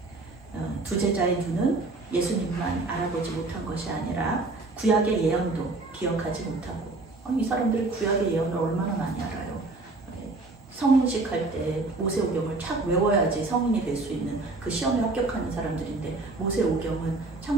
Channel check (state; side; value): quieter; left; 3.2 dB